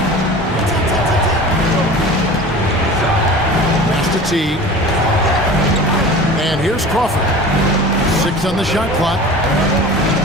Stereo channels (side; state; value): both; normal; correlation 0.38